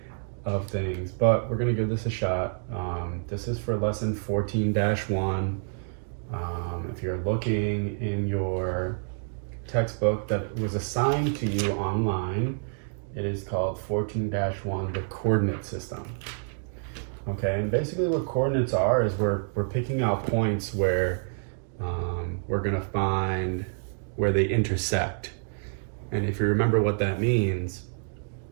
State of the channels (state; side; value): silent; left; digital silence